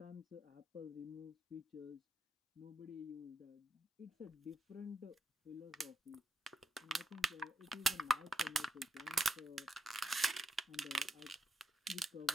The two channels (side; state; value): both; normal; correlation 0.78